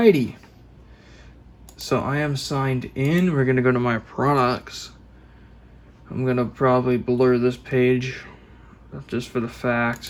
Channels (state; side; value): identical; both; correlation 1.00